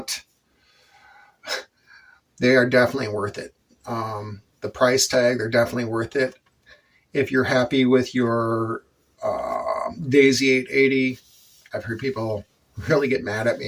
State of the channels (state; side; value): identical; both; correlation 1.00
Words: they are definitely worth it. The price tag, they're definitely worth it. If you're happy with your Daisy 880, I've heard people really get mad at